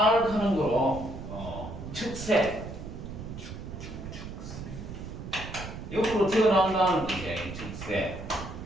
하는 거로 축세. 옆으로 튀어나온다는 뜻이에요. 축세.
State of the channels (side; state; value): right; noise; rumble, 9 dB below the sound